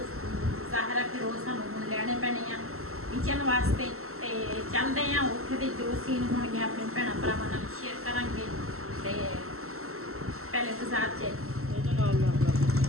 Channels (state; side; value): late; left; 0.63 ms